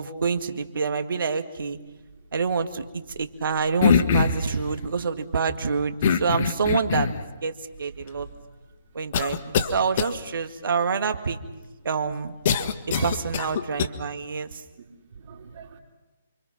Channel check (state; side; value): inverted; both; correlation -0.63